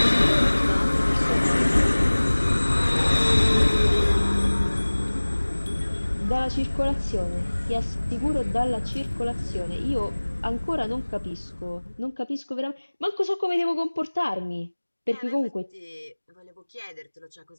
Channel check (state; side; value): inverted; both; correlation -1.00